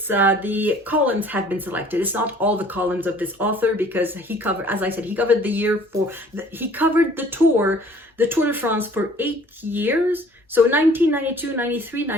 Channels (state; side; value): normal; both; correlation 0.53